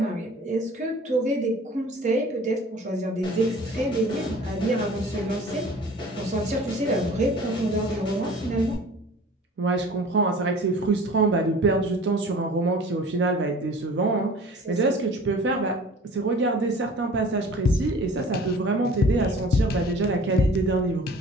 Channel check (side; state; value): both; normal; correlation 0.46